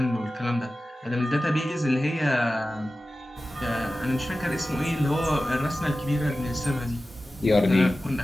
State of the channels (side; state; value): both; normal; correlation 0.95